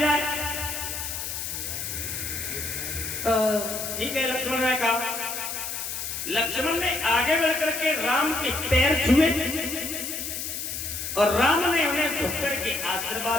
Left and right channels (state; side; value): noise; left; hiss, 5 dB below the sound